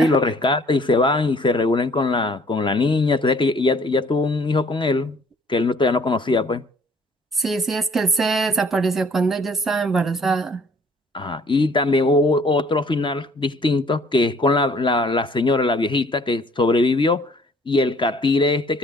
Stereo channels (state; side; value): normal; both; correlation 0.57